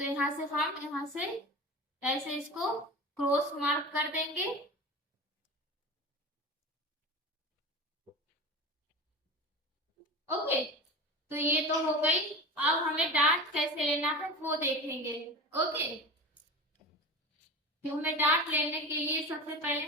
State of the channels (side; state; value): both; normal; correlation 0.30